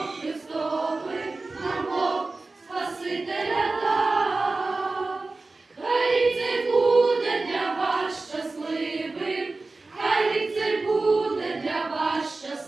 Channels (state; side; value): quieter; left; 3.5 dB